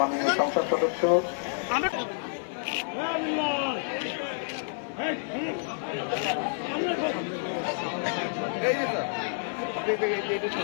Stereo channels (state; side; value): silent; right; 59 dB below the other